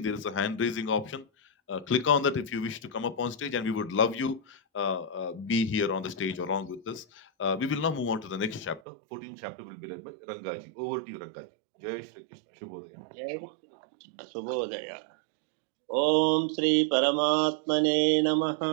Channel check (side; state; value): left; drops out; at 8.8 s